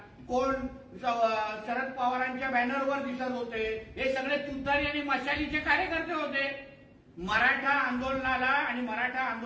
कोण शरद पवारांच्या बॅनरवर दिसत होते, हे सगळे तुतारी आणि मशालीचे कार्यकर्ते होते. मराठा आंदोलनाला आणि मराठा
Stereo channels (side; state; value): both; identical; correlation 1.00